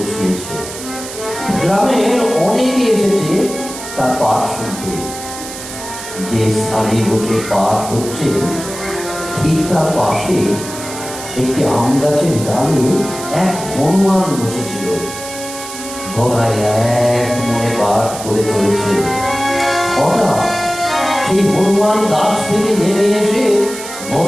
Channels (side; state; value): right; noise; hiss, 11 dB below the sound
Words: গ্রামের অনেকে এসেছে তার পাঠ শুনতে। যে স্থানে বসে পাঠ হচ্ছে ঠিক তার পাশে একটি আম গাছের ডালে এক হনুমান বসেছিল। গদাই এক মনে পাঠ করে চলেছে। হঠাৎ সেই হনুমান গাছ থেকে নেমে এসে